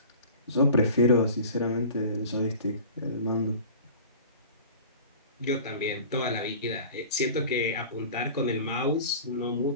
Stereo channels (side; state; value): both; inverted; correlation -0.41